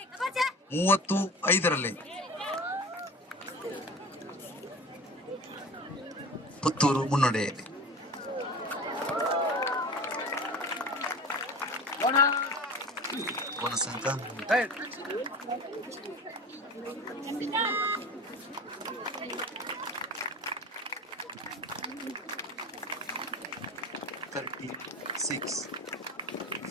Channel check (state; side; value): normal; both; correlation 0.35